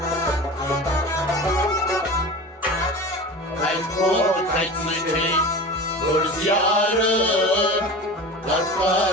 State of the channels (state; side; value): normal; both; correlation 0.32